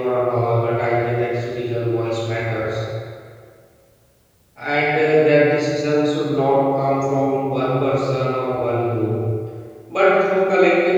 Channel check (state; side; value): identical; both; correlation 1.00